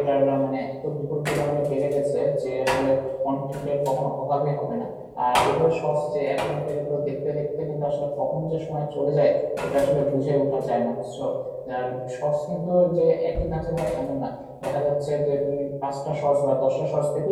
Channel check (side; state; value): both; identical; correlation 1.00